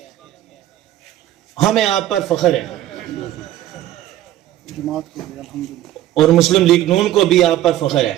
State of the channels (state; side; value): quieter; left; 13.3 dB